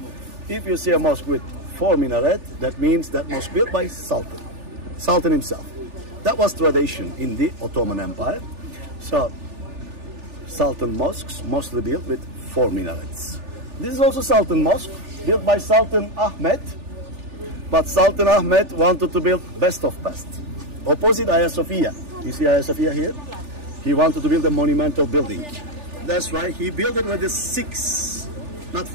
If you see a mosque with 4 minaret, that means that mosque built by sultan, sultan himself. That was tradition in the Ottoman Empire. So, sultan mosques mostly built with 4 minarets. This is also sultan mosque, built by Sultan Ahmed. But Sultan Ahmed wanted to build best of best. Opposite Hagia Sophia. You see Hagia Sophia here? He wanted to build a monumental building. That's right, he built it with the 6, not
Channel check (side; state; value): left; late; 3.4 ms